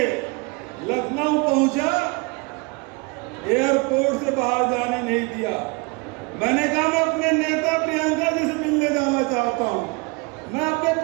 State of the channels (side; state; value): left; quieter; 29.0 dB